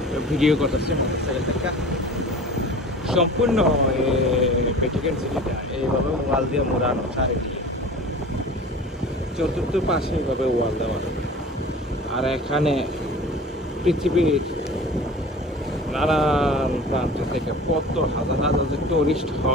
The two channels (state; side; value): normal; both; correlation 0.40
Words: ভিডিও করতেছি মোটরসাইকেল থেকে। সম্পূর্ণ ভ্যাটিকান সিটিটা এইভাবে ওয়াল দিয়ে মোড়ানো, চারিদিকে চতুর্থ পাশে এইভাবে ওয়াল দেওয়া। আর এখানে পৃথিবীর নানান প্রান্ত থেকে কত হাজার হাজার যে টুরিস্ট